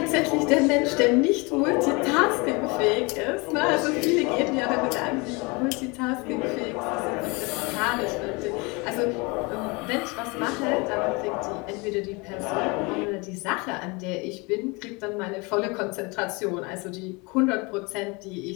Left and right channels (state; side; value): quieter; right; 27.7 dB